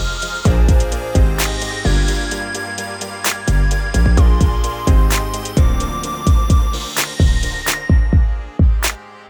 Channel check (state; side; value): identical; both; correlation 1.00